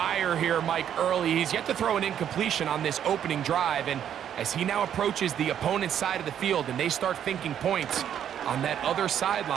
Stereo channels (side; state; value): left; quieter; 9.6 dB